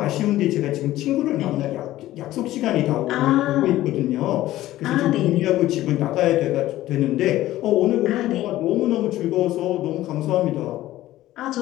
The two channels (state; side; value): quieter; right; 15.1 dB